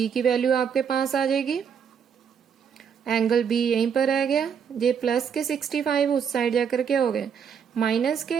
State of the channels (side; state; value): left; quieter; 7.3 dB